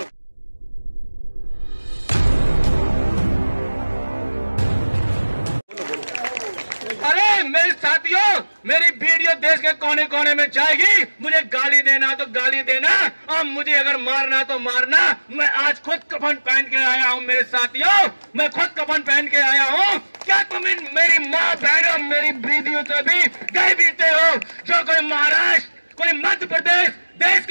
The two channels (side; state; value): both; inverted; correlation -1.00